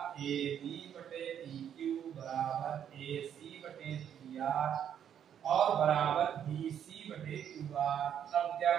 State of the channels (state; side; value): quieter; left; 9.2 dB